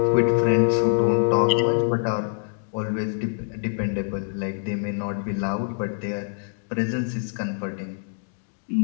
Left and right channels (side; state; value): right; silent; digital silence